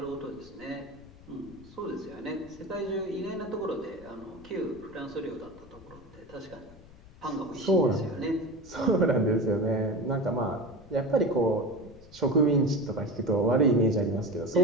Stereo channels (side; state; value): left; noise; rumble, 21 dB below the sound